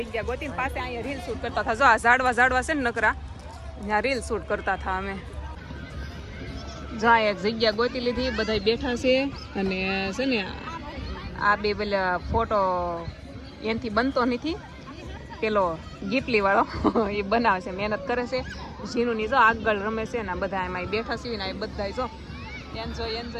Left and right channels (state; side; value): identical; both; correlation 1.00